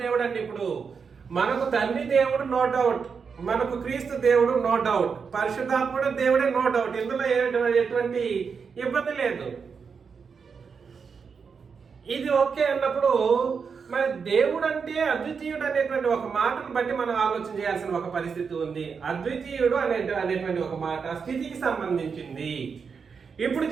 దేవుడు అంటే ఇప్పుడు మనకు తండ్రి దేవుడు నో డౌట్, మనకు క్రీస్తు దేవుడు నో డౌట్, పరిశుద్ధాత్ముడు దేవుడే నో డౌట్. ఇందులో ఎటువంటి ఇబ్బంది లేదు. ఇది ఓకే అన్నప్పుడు మరి దేవుడు అంటే అద్వితీయుడు అనేటువంటి ఒక మాటను బట్టి మనం ఆలోచన చేయాల్సిన ఒక పరిస్థితి ఉంది. అద్వితీయుడు అనేటువంటి ఒక మాట స్థితికి సంబంధించింది. ఇప్పుడు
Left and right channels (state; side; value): quieter; left; 5.8 dB